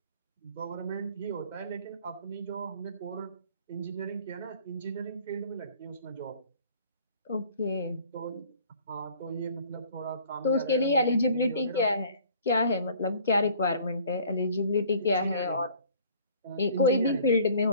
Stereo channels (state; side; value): inverted; both; correlation -0.52